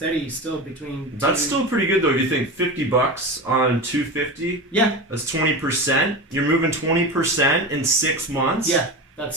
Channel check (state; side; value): normal; both; correlation 0.25